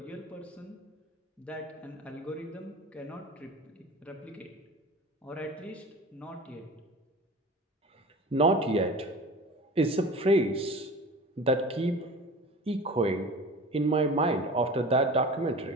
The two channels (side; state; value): both; normal; correlation 0.37